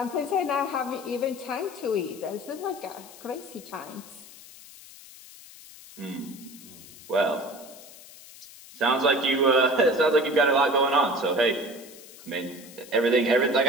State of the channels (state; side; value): noise; left; hiss, 19 dB below the sound